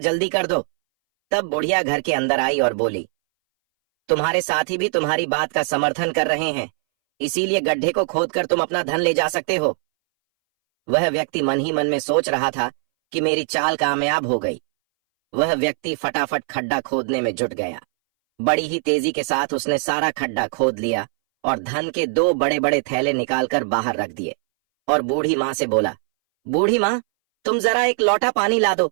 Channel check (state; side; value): silent; left; 62 dB below the other